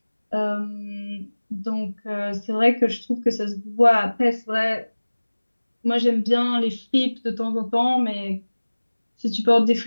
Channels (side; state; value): both; inverted; correlation -1.00